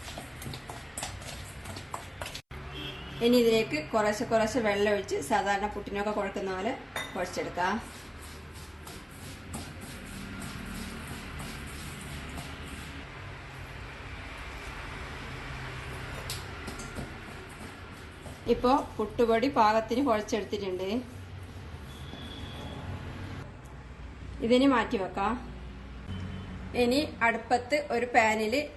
ഇനി ഇതിലേക്ക് കുറേശ്ശെ വെള്ളം ഒഴിച്ച് സാധാരണ പുട്ടിനൊക്കെ കുഴക്കുന്ന പോലെ കുഴച്ചെടുക്കാം. ഇപ്പോൾ പുട്ടുപൊടി പാകത്തിന് കുഴച്ചെടുത്തിട്ടുണ്ട്. ഇതിന് മാറ്റി വെക്കാം. ഇനി അടുപ്പത്ത് ഒരു പാനിൽ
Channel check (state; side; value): identical; both; correlation 1.00